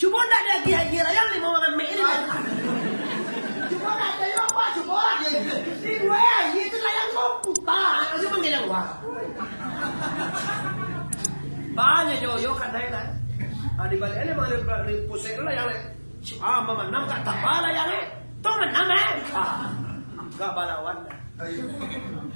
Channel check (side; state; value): both; inverted; correlation -1.00